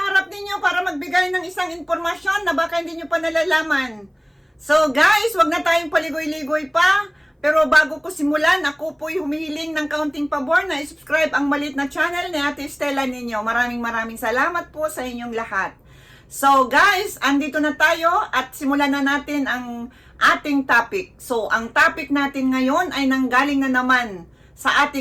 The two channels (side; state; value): both; identical; correlation 1.00